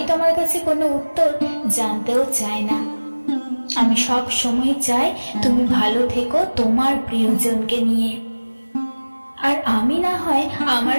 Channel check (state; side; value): inverted; both; correlation -1.00